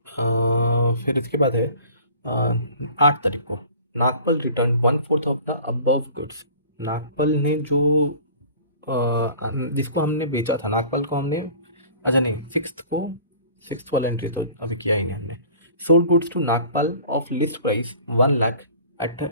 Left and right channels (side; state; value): both; inverted; correlation -0.46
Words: फिर इसके बाद है 8 तारीख को Nagpal return 1/4 of the above goods. Nagpal ने जो जिसको हमने बेचा था, नागपल को हमने, अच्छा नहीं, 6th वाला एंट्री तो अभी किया ही नहीं हमने। Sold goods to Nagpal of list price 1 lakh at